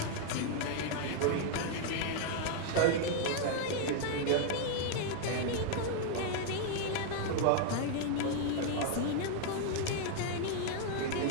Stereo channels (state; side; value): different; both; correlation 0.00